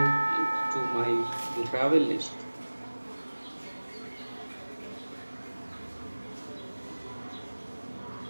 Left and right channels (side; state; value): both; inverted; correlation -1.00